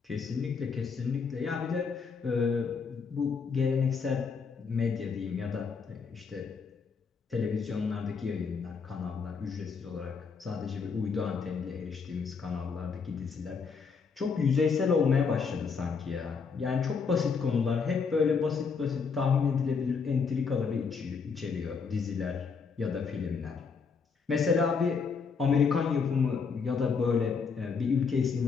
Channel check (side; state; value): right; quieter; 5.5 dB